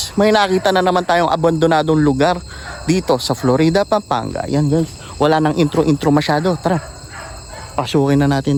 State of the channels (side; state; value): both; identical; correlation 1.00